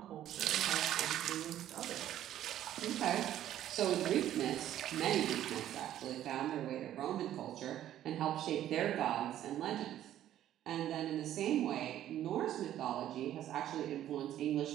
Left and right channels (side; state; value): left; quieter; 12.1 dB